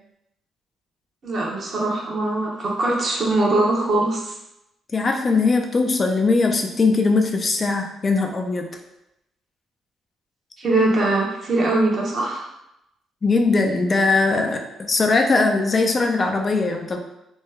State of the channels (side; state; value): both; normal; correlation 0.79